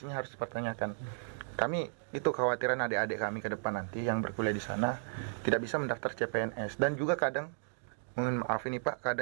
harus dipertanyakan. Kami itu kekhawatiran adik-adik kami ke depan nanti yang berkuliah di sana tidak bisa mendaftar CPNS, dan juga kadang, mohon maaf ini Pak,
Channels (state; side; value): silent; left; digital silence